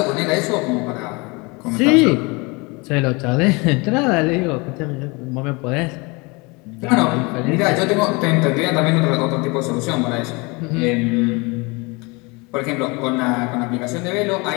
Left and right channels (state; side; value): quieter; right; 27.3 dB